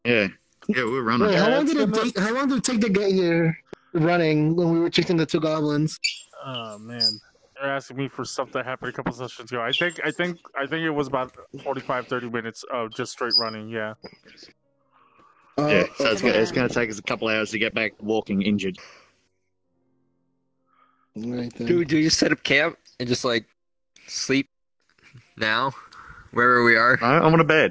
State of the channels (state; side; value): identical; both; correlation 1.00